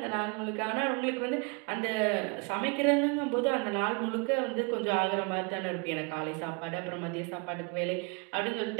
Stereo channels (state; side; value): quieter; left; 32.9 dB